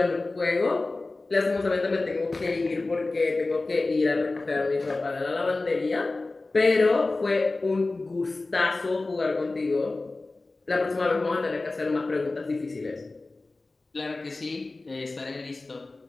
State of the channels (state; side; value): quieter; right; 3.3 dB